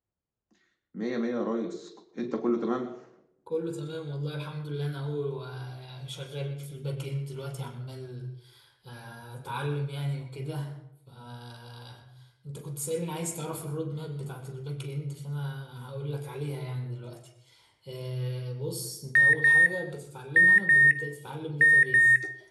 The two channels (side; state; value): both; identical; correlation 1.00